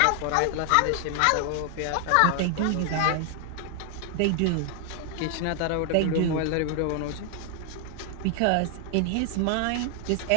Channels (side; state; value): both; different; correlation 0.00